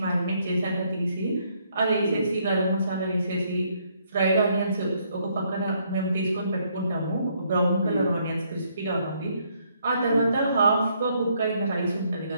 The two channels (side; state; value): both; inverted; correlation -0.70